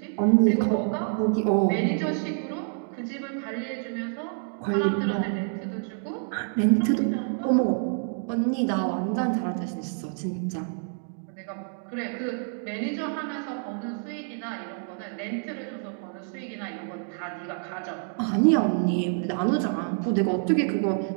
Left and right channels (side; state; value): left; silent; 59 dB below the other